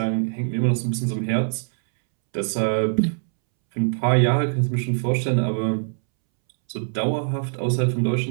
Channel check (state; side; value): silent; left; 64 dB below the other